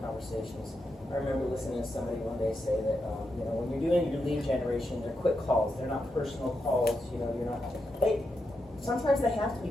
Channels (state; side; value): normal; both; correlation 0.85